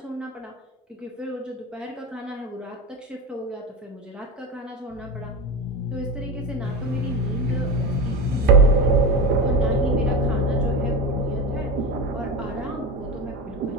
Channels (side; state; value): both; normal; correlation 0.21